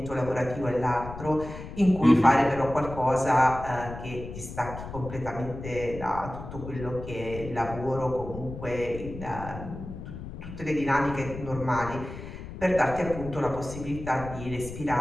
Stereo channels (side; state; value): left; noise; rumble, 11 dB below the sound